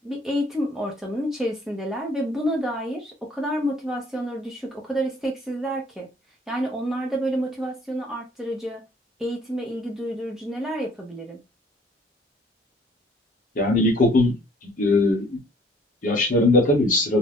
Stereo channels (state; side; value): normal; both; correlation 0.57